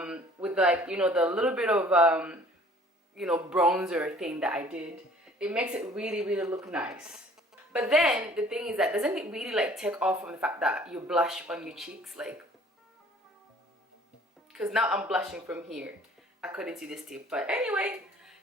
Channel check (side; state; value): both; normal; correlation 0.53